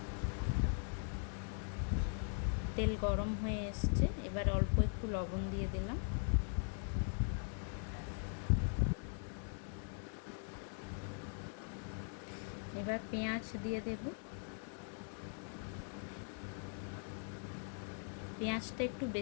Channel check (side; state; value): right; silent; 50 dB below the other